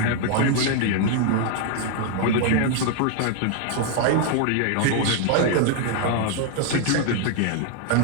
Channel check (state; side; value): different; both; correlation 0.00